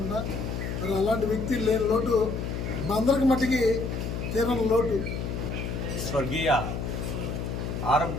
మరి అలాంటి వ్యక్తి లేని లోటు అందరికి మట్టికి తీరని లోటు. స్వర్గీయ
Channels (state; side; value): noise; left; hum, 4 dB below the sound